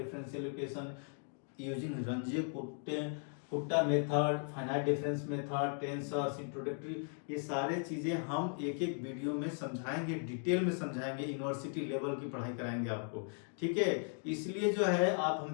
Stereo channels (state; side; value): silent; right; 53 dB below the other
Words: equation using Runge Kutta method, finite difference method, tensors, introductory, ये सारे चीजें हम एक एक वीडियो में समझाएंगे, डिटेल में समझाएंगे, यूनिवर्सिटी लेवल की पढ़ाई कराएंगे आपको, ठीक है। इसलिए जो है आप